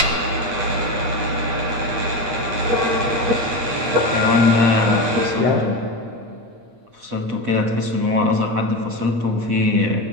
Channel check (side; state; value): left; late; 8.7 ms